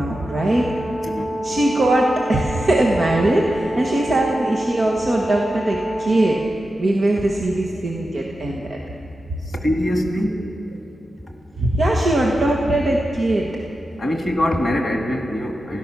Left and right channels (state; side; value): normal; both; correlation 0.91